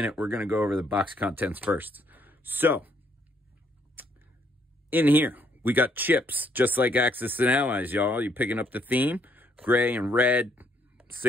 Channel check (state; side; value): normal; both; correlation 0.69